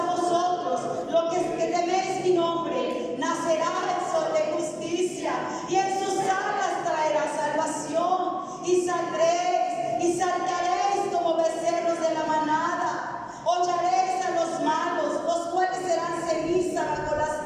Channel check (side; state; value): both; identical; correlation 1.00